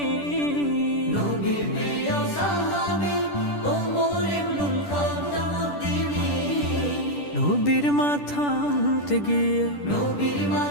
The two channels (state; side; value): late; right; 10 ms